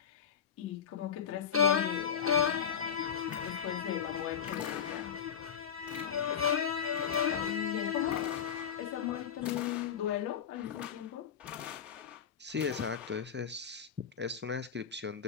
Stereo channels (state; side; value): quieter; right; 7.7 dB